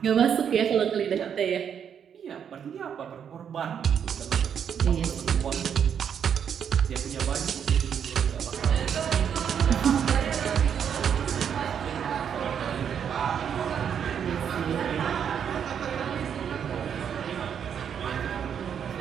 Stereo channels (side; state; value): left; quieter; 8.1 dB